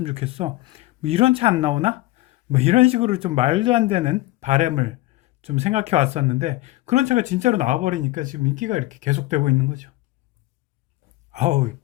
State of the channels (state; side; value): quieter; right; 18.3 dB